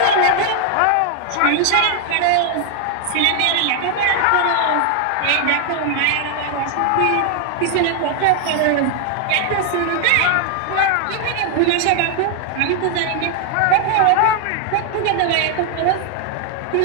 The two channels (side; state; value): both; different; correlation 0.00